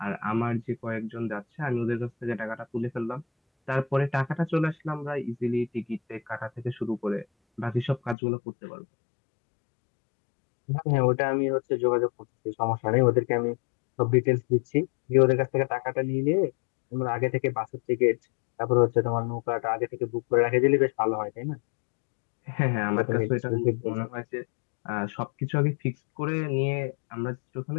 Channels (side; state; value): right; drops out; at 8.2 s